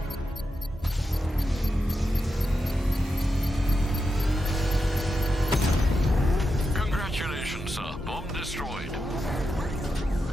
Congratulations, sir. Bomb destroyed.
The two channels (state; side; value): normal; both; correlation 0.87